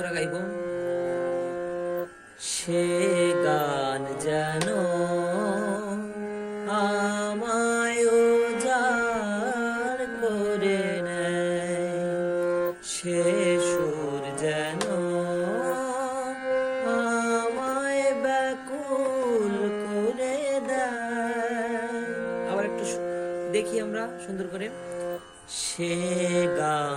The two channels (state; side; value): identical; both; correlation 1.00